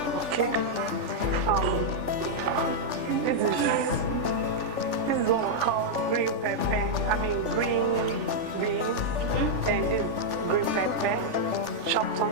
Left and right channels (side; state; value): left; late; 3.4 ms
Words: Okay. This is what we call green pepper. Green beans. And this green pepper, chopped